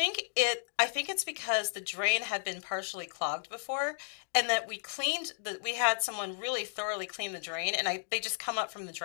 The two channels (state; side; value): silent; right; digital silence